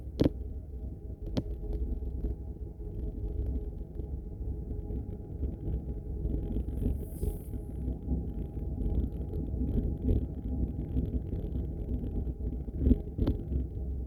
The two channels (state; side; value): identical; both; correlation 1.00